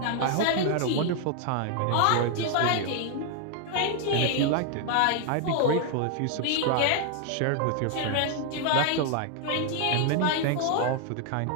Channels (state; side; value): different; both; correlation 0.00